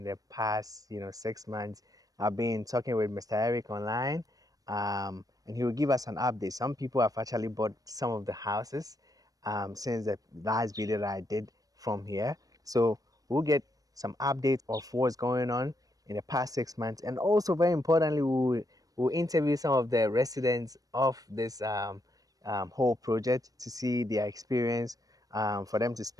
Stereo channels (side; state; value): left; late; 0.18 ms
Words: the past, 6 months. I've been talking with Mr. Eric online, and he will give us an update. Some people have actually bought some of the houses since the last video that I did from here. So we'll get some updates of what's going on in the past 6 months, and also very importantly, we'll interview some of the residents of this whole project to see their experience, for them to